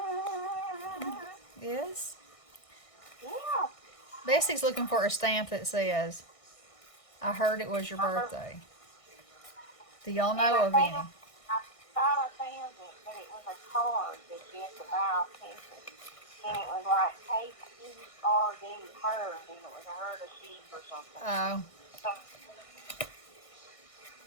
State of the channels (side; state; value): right; late; 1.6 ms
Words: Yes? Yeah. Bessie's looking for a stamp that says, I heard it was your birthday. Do y'all know of any? I thought I found it, but it was a card that you had to buy off campus. And it was like tape herd, and it was a herd of sheep or something. Oh,